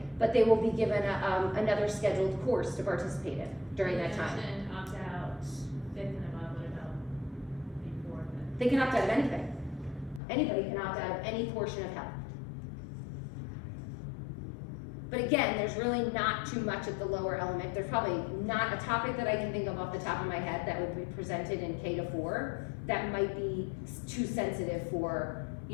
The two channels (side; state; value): right; drops out; at 10.2 s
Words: but they will be given another scheduled course to participate in during that time. You mentioned opt-out 5th and above, what about before that? They can opt out of anything. Anybody can opt out of any portion of health. But again, there's really not too much at the lower element. There's probably not a topic that I can think of off the top of my head that would be presented in K to 4 that might be too sensitive for,